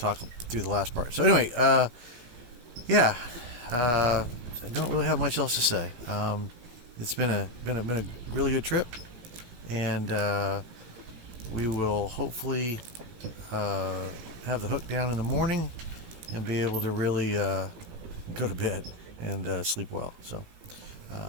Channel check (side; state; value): left; late; 17 ms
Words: through the last part. So anyway, I don't really have much else to say. It's been a really good trip, and we will hopefully have the hook down in the morning and be able to really go to bed and sleep well. So